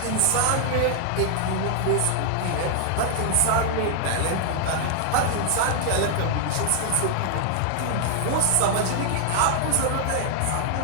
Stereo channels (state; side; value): different; both; correlation 0.00